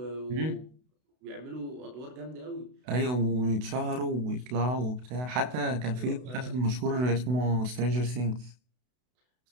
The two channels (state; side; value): late; left; 32 ms